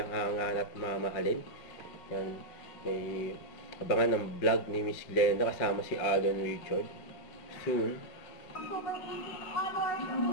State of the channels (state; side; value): late; right; 5.5 ms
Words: hangan at mamahalin. Yan, may abangan ng vlog ni Miss Glenda kasama si Alden Richard. Soon.